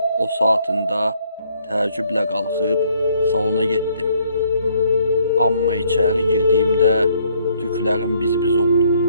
o saatında təəccüblə qalxıb salona getdim. Amma içəri girdiyimdə tüklərim biz-biz oldu.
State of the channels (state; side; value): inverted; both; correlation -0.66